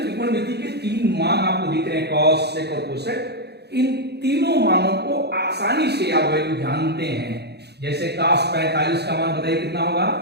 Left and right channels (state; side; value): late; left; 0.48 ms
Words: के 3 मान आपको दिख रहे हैं, कॉस, सेक और कोसेक, इन तीनों मानों को आसानी से आप वैल्यू जानते हैं। जैसे कास 45 का मान बताइए कितना होगा।